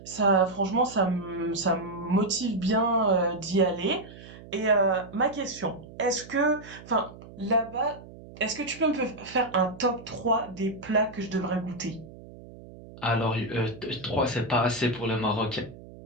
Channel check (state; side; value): noise; right; hum, 17 dB below the sound